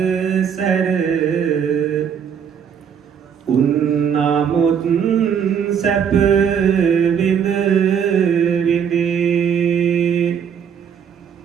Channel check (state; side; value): quieter; left; 7.8 dB